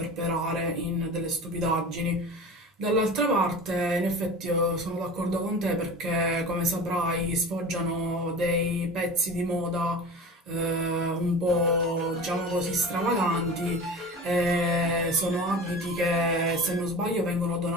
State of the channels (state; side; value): normal; both; correlation 0.34